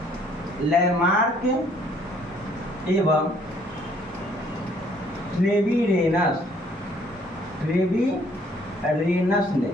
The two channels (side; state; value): both; normal; correlation 0.62